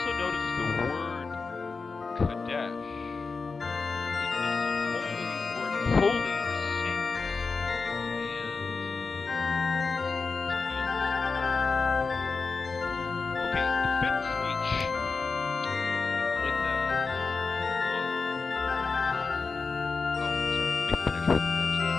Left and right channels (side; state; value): right; quieter; 4.5 dB